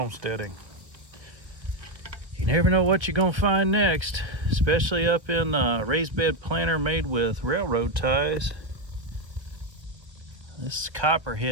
You never know what you're gonna find next, especially up in a raised bed planter made with railroad ties. This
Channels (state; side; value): late; left; 1.5 ms